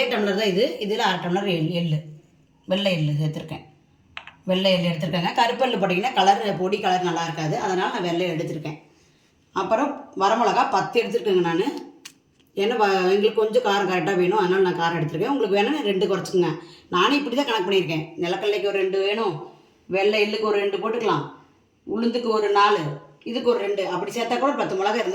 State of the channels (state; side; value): identical; both; correlation 1.00